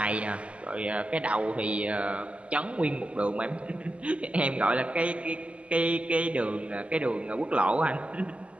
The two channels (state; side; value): late; left; 0.059 ms